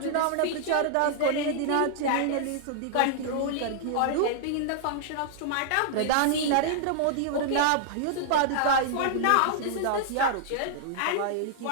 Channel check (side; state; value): both; different; correlation -0.01